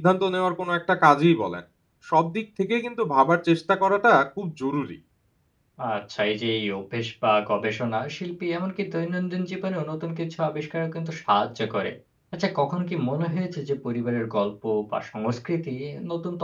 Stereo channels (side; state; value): both; identical; correlation 1.00